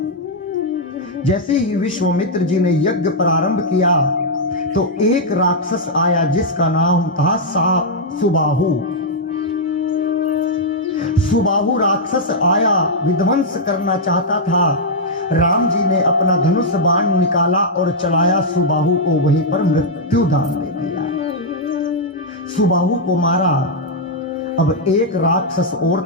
जैसे ही विश्वामित्र जी ने यज्ञ प्रारंभ किया तो एक राक्षस आया जिसका नाम था सुबाहु। सुबाहु राक्षस आया, विध्वंस करना चाहता था। राम जी ने अपना धनुष बाण निकाला और चलाया, सुबाहु को वहीं पर मृत्यु दान दे दिया, सुबाहु को मारा। अब एक राक्षस और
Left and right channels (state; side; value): normal; both; correlation -0.06